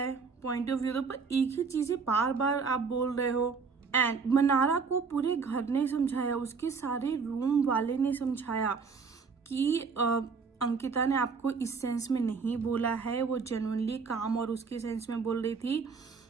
पॉइंट ऑफ व्यू, तो पर एक ही चीजें बार बार आप बोल रहे हो। एंड मनारा को पूरे घर ने समझाया, उसके सारे रूम वाले ने समझाया कि अंकिता ने आपको इस सेंस में नहीं बोला है, वो जेन्युइनली काम और उसके सेंस में बोल रही थी,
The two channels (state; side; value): quieter; left; 5.2 dB